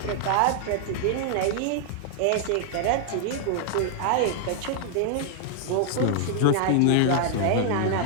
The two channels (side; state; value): both; different; correlation -0.01